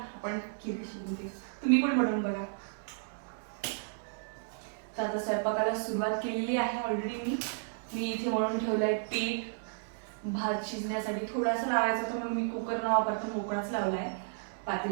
खीर कशी बनते. तुम्ही पण बनवून बघा. तर आता स्वयंपाकाला सुरुवात केलेली आहे ऑलरेडी. मी इथे मळून ठेवलं आहे पीठ. भात शिजण्यासाठी थोडासा लावायचा तर म्हणून मी कुकर न वापरता मोकळाच लावला आहे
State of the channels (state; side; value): silent; left; 56 dB below the other